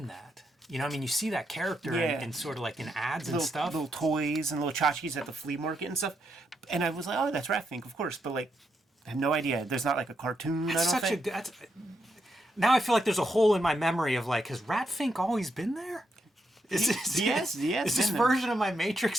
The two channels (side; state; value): both; normal; correlation 0.81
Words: that. You know, I mean, you see that character in sort of like in ads and stuff. Little toys and little tchotchkes at the flea market and stuff. And I was like, oh, that's Rat Fink, of course. But, like, I have no idea. There's not, like, a cartoon, I don't think. Now I feel like there's a hole in my memory of, like, has Rat Fink always been there? Is this version of my Matrix